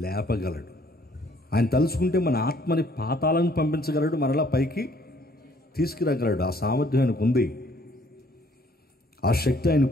లేపగలడు. ఆయన తలుచుకుంటే మన ఆత్మని పాతాలను పంపించగలడు, మరలా పైకి తీసుకురాగలడు. ఆ సామర్థ్యం ఆయనకు ఉంది, ఆ శక్తి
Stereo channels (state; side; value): normal; both; correlation 0.61